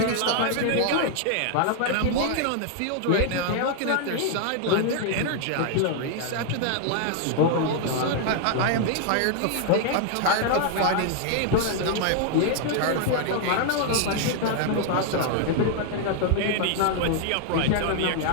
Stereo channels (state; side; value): different; both; correlation 0.00